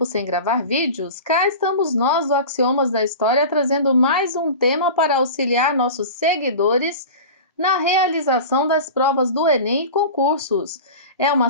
sem gravar vídeos, cá estamos nós do Axiomas da História trazendo mais um tema para auxiliar nossos seguidores na realização das provas do Enem e concursos. É uma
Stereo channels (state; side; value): inverted; both; correlation -0.33